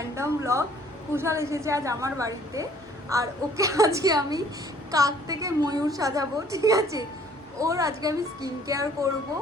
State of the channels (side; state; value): both; normal; correlation 0.58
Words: ব্লগ। কুশাল এসেছে আজ আমার বাড়িতে, আর ওকে আজকে আমি কাক থেকে ময়ূর সাজাবো, ঠিক আছে? ওর আজকে আমি স্কিন কেয়ার করব।